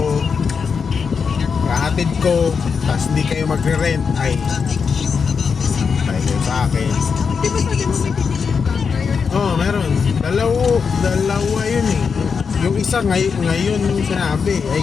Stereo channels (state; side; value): quieter; right; 5.8 dB